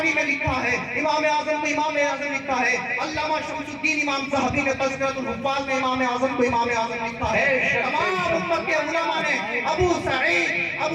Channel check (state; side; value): identical; both; correlation 1.00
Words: میں لکھا ہے امام اعظم کو امام اعظم لکھا ہے. علامہ شمس الدین امام ذہبی نے تذکرۃ الحفاظ میں امام اعظم کو امام اعظم لکھا ہے. تمام امت کے علماء نے ابو